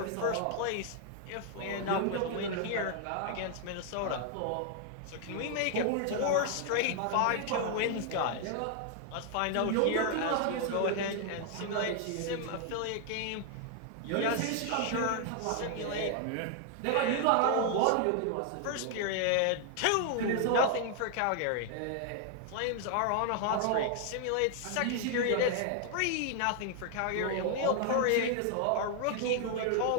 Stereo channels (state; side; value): different; both; correlation 0.00